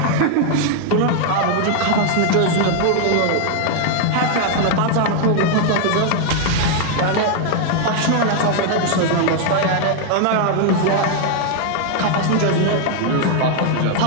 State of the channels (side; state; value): both; different; correlation 0.00